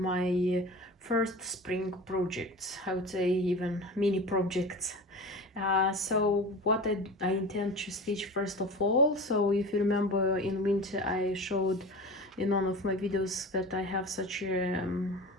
first spring projects, I would say even mini projects. So what I intend to stitch first of all. So if you remember, in winter I showed in one of my videos that I have such a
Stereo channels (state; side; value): normal; both; correlation 0.33